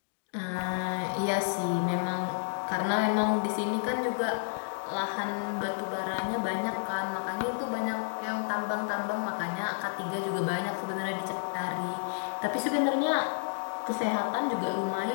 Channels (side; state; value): right; silent; digital silence